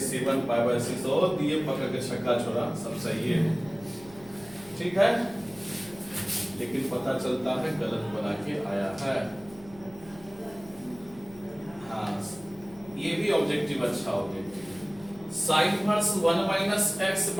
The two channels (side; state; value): left; noise; hum, 21 dB below the sound